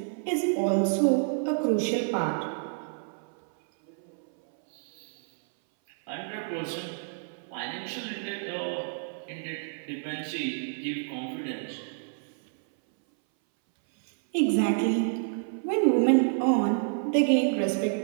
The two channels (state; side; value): silent; left; 59 dB below the other